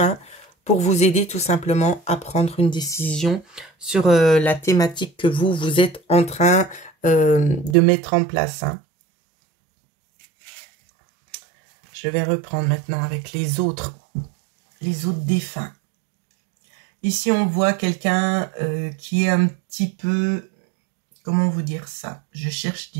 pour vous aider tout simplement à prendre une décision sur la thématique que vous êtes en train de mettre en place. Hein. Je vais reprendre maintenant avec les autres défunts. Ici, on voit quelqu'un qui est un petit peu... Comment vous dire ça? Je cherche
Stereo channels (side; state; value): left; drops out; at 7.8 s